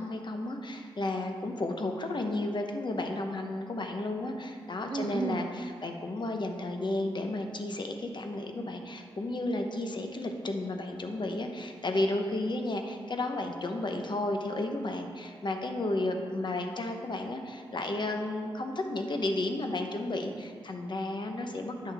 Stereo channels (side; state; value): both; normal; correlation 0.77